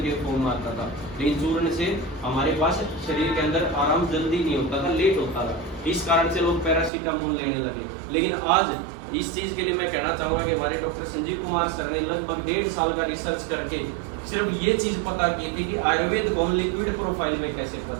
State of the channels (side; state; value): left; drops out; at 6.9 s